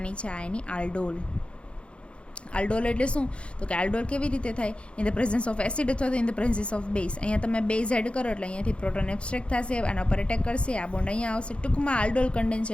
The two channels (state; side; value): late; right; 0.058 ms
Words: છે આ એની આલ્ડોલ. આલ્ડોલ એટલે શું તો કે આલ્ડોલ કેવી રીતે થાય? In the presence of acid અથવા તો in the presence of base. અહીંયા તમે બેઝ એડ કરો એટલે અહીંયાથી પ્રોટોન એબ્સ્ટ્રેક્ટ થશે, આના પર એટેક કરશે, આ બોન્ડ અહીંયા આવશે. ટૂંકમાં આલ્ડોલ